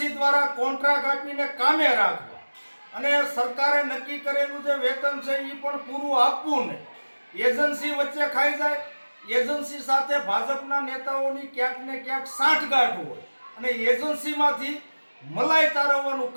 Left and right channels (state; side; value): inverted; both; correlation -1.00